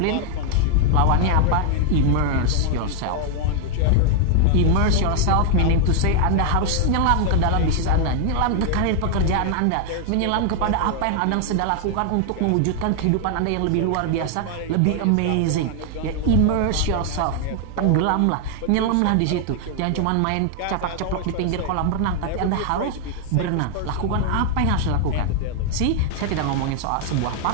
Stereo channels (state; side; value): different; both; correlation 0.00